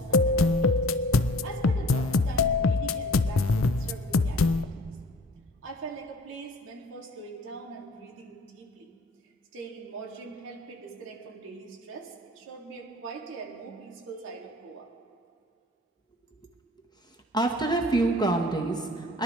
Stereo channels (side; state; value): both; normal; correlation 0.49